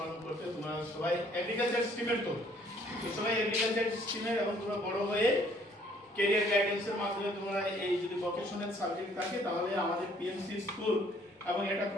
করতে তোমরা সবাই এগ্রিকালচার স্ট্রিমের তো সবাই এগ্রিকালচার স্ট্রিমের এবং তোমরা বড় হয়ে ক্যারিয়ার গাইডেন্সের মাধ্যমে তোমরা এই যদি ভোকেশনাল সাবজেক্ট থাকে তাহলে আমাদের পিএমসি স্কুল এবং এটা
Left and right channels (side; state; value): both; normal; correlation 0.61